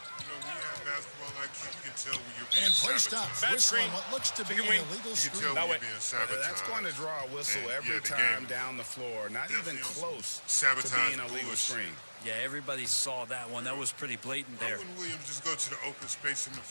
You can tell when you're being and play stops. Whistle on what looks to be an illegal screen. That's going to draw a whistle every time down the floor. Not even close to being a legal screen. Yeah, everybody saw that one. That was pretty blatant there. Why wouldn't Williams just go to the open space in the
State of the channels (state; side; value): inverted; both; correlation -1.00